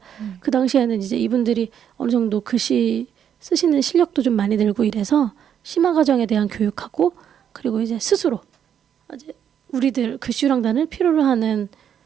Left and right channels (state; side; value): quieter; left; 8.9 dB